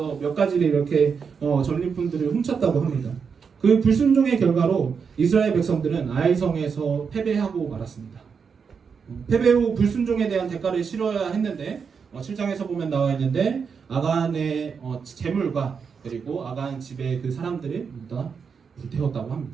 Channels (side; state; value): left; quieter; 6.1 dB